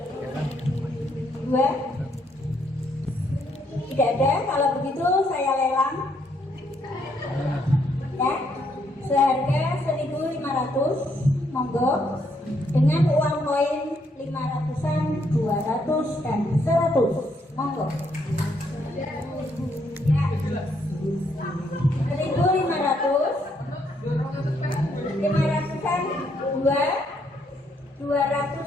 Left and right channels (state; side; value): normal; both; correlation 0.73